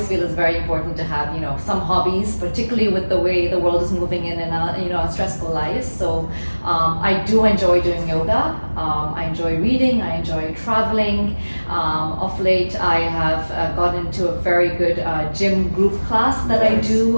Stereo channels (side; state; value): both; inverted; correlation -1.00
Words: feel it's very important to have some hobbies, particularly with the way the world is moving in and our stressful lives. So I do enjoy doing yoga. I enjoy reading. I enjoy traveling. Of late, I have gotten into a very good gym group class that I